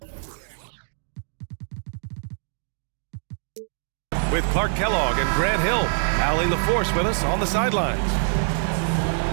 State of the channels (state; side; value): silent; left; digital silence